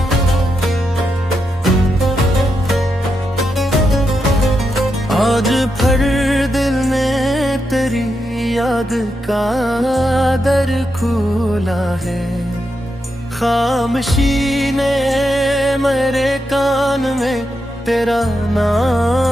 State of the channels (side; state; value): both; normal; correlation 0.85